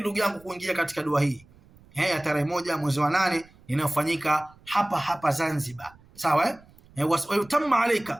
ndugu yangu kuingia katika dua hii ya tarehe 1 mwezi wa 8 inayofanyika hapa Zanzibar? Sawa. Wayutamma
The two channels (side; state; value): right; noise; rumble, 27 dB below the sound